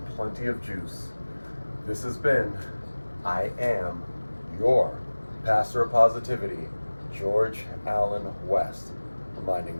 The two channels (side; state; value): both; inverted; correlation -1.00